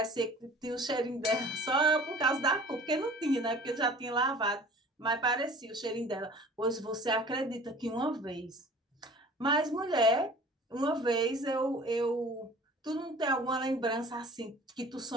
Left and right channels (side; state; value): both; normal; correlation 0.46